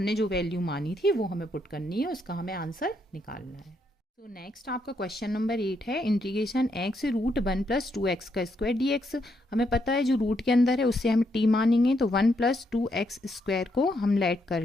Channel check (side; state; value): both; normal; correlation 0.77